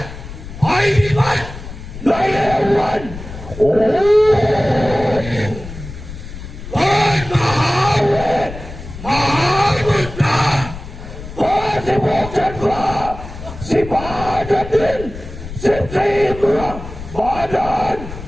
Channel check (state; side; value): noise; left; rumble, 12 dB below the sound